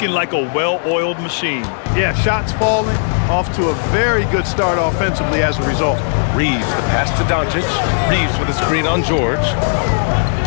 like a well-oiled machine. Yeah, shots falling off to a very good start offensively as a result. Reeves, the pass to Doncic. Reeves with a screen on George.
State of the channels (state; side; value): silent; right; digital silence